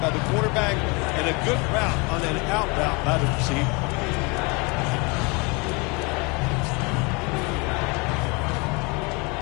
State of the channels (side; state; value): right; quieter; 29.1 dB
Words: by the quarterback and a good route on an out route by the receiver?